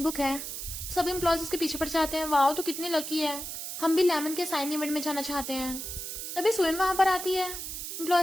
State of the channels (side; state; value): right; noise; hiss, 6 dB below the sound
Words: बुक है, सब एम्प्लॉयज उसके पीछे पड़ जाते हैं, वाओ तो कितनी लकी है, हम भी लेमन के साइन इवेंट में जाना चाहते हैं। तभी सुयन वहां पर आती है।